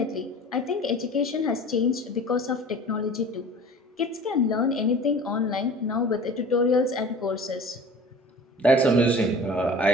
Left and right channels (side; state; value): both; normal; correlation 0.42